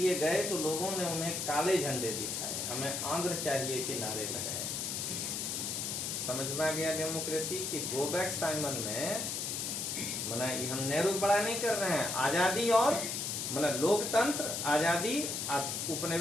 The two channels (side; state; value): left; noise; hiss, 2 dB below the sound